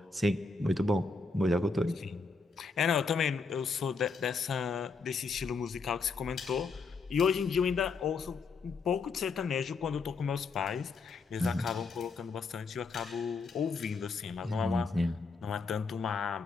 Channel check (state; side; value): quieter; right; 4.4 dB